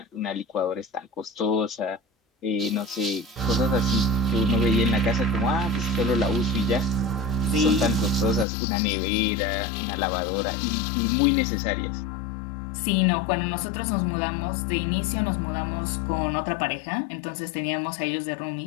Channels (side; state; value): right; drops out; at 8.5 s